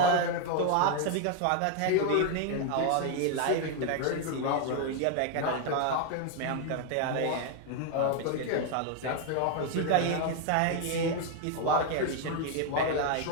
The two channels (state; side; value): different; both; correlation 0.01